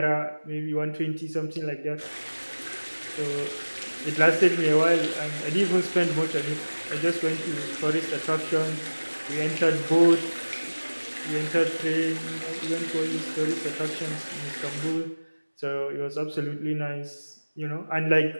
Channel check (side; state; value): both; inverted; correlation -1.00